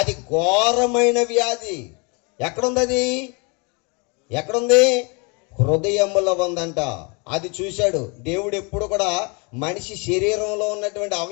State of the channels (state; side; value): quieter; right; 31.9 dB